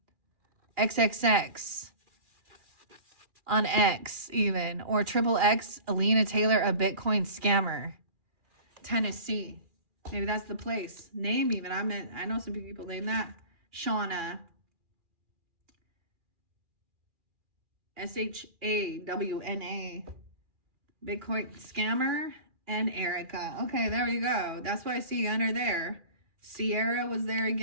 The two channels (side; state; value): left; late; 2.4 ms